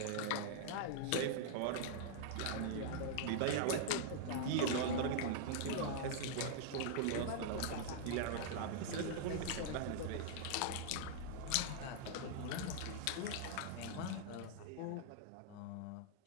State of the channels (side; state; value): both; different; correlation -0.01